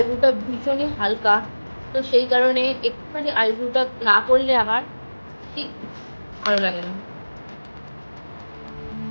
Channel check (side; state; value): both; inverted; correlation -1.00